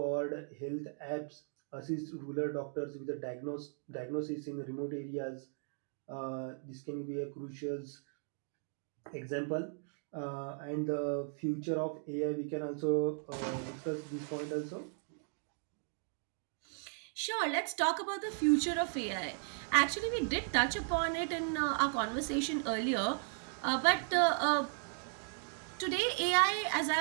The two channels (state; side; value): silent; left; 53 dB below the other